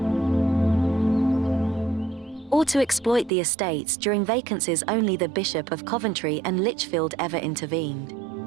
or to exploit the estates during vacancies. Only the Bishop of Coventry and Lichfield ever intervened.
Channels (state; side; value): drops out; left; at 3.3 s